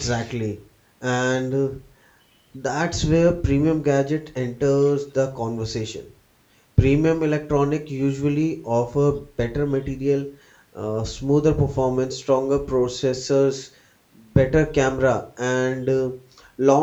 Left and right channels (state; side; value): identical; both; correlation 1.00